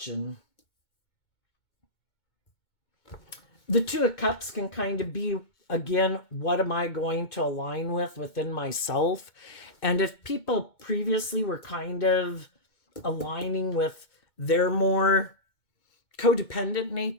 The Two of Cups can kind of be, again, what am I going to align with within myself? And if people previously were kind of aligning with their more codependent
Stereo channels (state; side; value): late; right; 2.2 ms